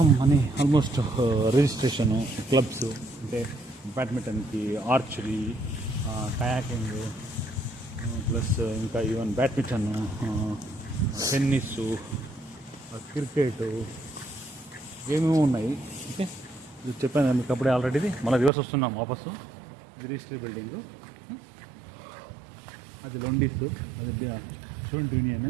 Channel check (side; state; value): left; drops out; at 18.5 s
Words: అని ఆల్మోస్ట్ రిజిస్ట్రేషను, క్లబ్స్, అంటే బ్యాడ్మింటన్కి, ఆర్చరీ, కయాకింగ్, ప్లస్ ఇంకా ఈవెన్ బ్యాడ్మింటన్, టెన్నిస్, క్రికెట్, ఏమేమో ఉన్నాయి. ఓకే, ఇది చెప్పాను మీకు అప్పుడే ఆల్రెడీ. మళ్ళీ రివర్స్ వస్తున్నాం వాపసు. ఇది రిజిస్ట్రీ బిల్డింగు, అది లొండిస్, అది స్టూడెంట్